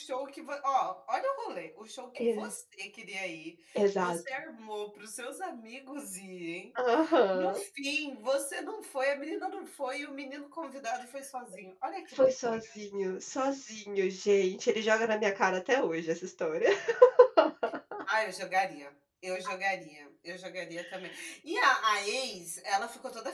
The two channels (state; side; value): identical; both; correlation 1.00